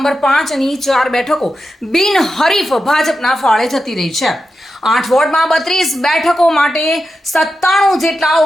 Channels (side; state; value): both; normal; correlation 0.89